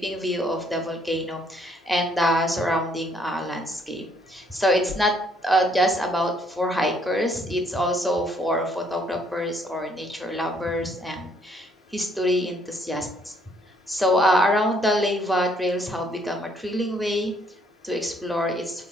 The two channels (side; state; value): both; normal; correlation 0.66